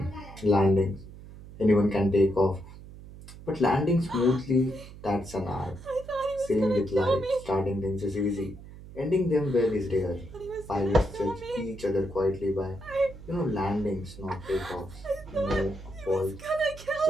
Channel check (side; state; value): right; noise; hum, 16 dB below the sound